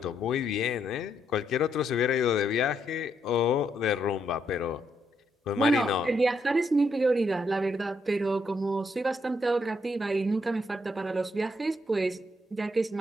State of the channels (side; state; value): both; normal; correlation 0.76